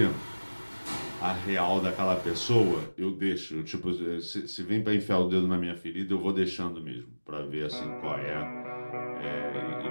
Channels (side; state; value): both; inverted; correlation -1.00